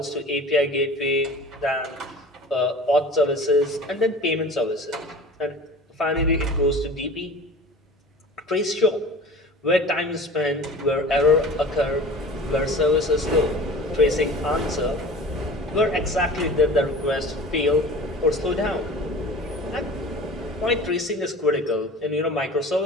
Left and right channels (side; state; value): both; normal; correlation 0.40